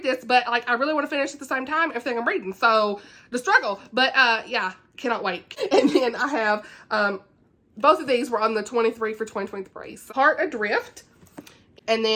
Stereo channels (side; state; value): both; identical; correlation 1.00